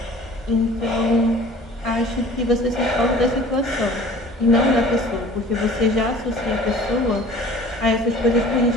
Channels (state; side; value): normal; both; correlation 0.46